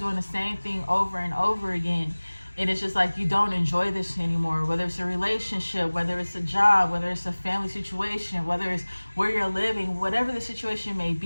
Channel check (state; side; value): inverted; both; correlation -1.00